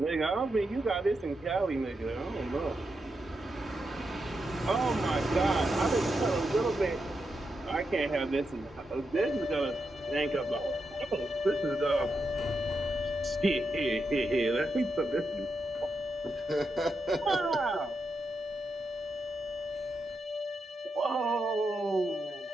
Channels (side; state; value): both; normal; correlation 0.85